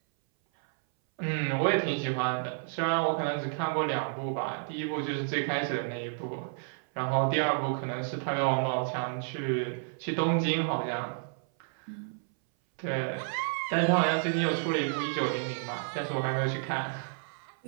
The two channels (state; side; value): silent; left; 57 dB below the other